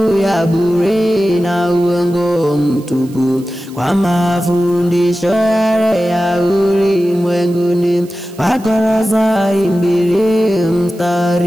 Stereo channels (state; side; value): noise; right; hiss, 24 dB below the sound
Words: ya bure na uongo mtupu, kwa mafundisho yale ya ulimwenguni. Wakolosai 2